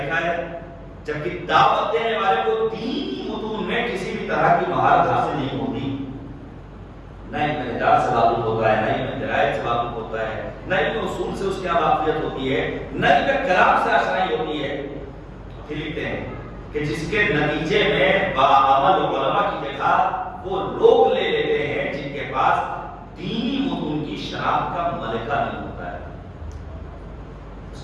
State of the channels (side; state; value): both; identical; correlation 1.00